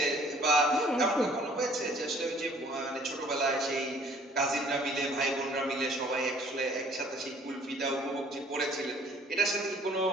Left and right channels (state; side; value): normal; both; correlation 0.57